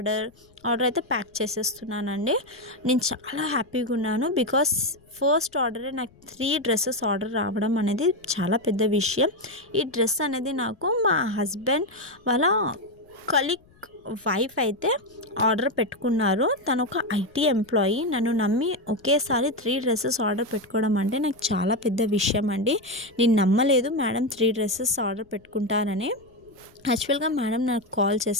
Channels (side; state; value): left; noise; rumble, 29 dB below the sound